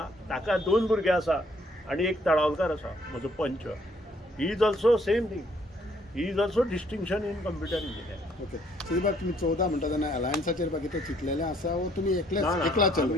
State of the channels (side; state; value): both; normal; correlation 0.65